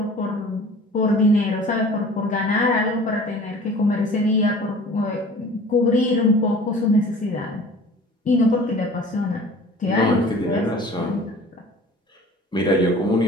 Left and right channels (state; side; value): normal; both; correlation 0.45